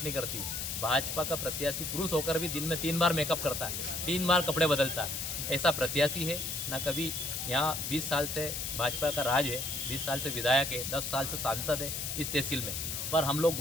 नहीं करती। भाजपा का प्रत्याशी पुरुष होकर भी दिन में 3 बार मेकअप करता है, 3 बार कपड़े बदलता है। ऐसा प्रत्याशी है ना। कभी यहाँ 20 साल से भाजपा का राज है, 20 साल से विधायक है, 10 साल से सांसद है इस तहसील में, पर हम लोग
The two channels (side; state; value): left; noise; hiss, 3 dB below the sound